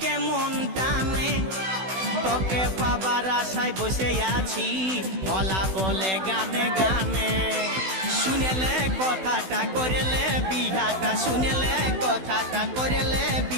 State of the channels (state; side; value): late; left; 16 ms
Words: মন টানে, তোকে পাবার আশায় বসে আছি ভোলা বলে গানে গানে। শুনেলে কথাটা করেলে বিহাটা, শুনেলে কথাটা করেলে